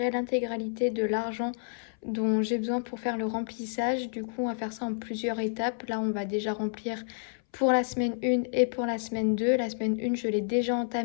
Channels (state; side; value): silent; right; 58 dB below the other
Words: l'intégralité de l'argent dont j'ai besoin pour faire le remplissage. Du coup, on va faire ça en plusieurs étapes. Là, on va déjà remplir pour la semaine 1 et pour la semaine 2. La semaine 1, je l'ai déjà